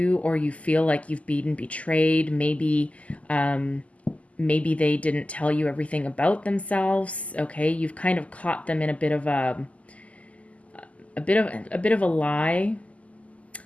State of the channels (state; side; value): late; right; 0.068 ms